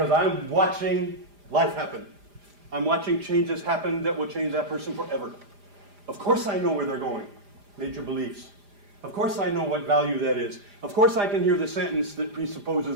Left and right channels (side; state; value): left; late; 4.9 ms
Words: I'm watching life happen. I'm watching changes happen that will change that person forever. Of course I know where they're going. Major beliefs. Of course I know what value that is. Of course I can hear the sentence that